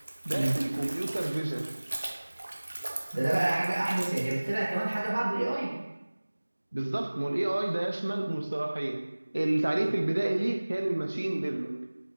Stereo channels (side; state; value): both; inverted; correlation -1.00